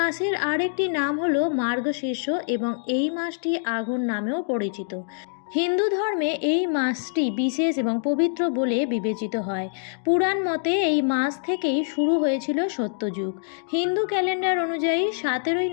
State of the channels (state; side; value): silent; right; digital silence